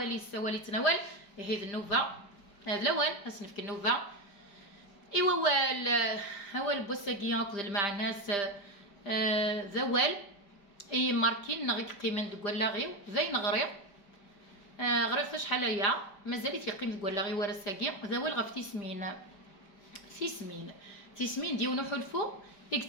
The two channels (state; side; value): late; right; 5.0 ms